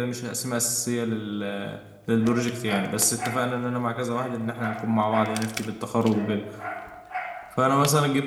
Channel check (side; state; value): both; identical; correlation 1.00